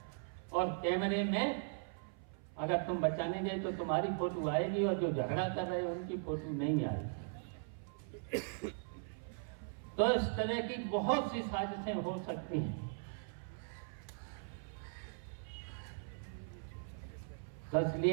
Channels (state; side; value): silent; left; 52 dB below the other